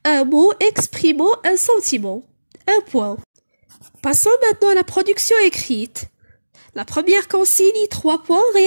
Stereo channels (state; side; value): inverted; both; correlation -1.00